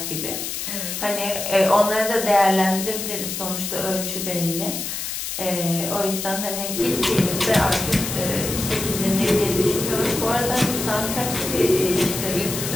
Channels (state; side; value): noise; left; hiss, 5 dB below the sound